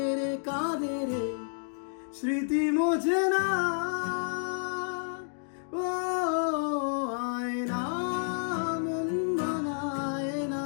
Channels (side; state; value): right; silent; digital silence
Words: রে কাঁদে রে, স্মৃতি মোছে না। ও আয়না মন বানায় না,